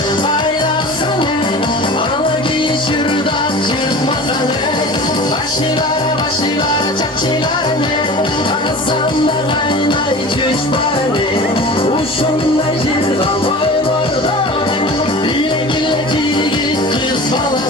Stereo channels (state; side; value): normal; both; correlation 0.37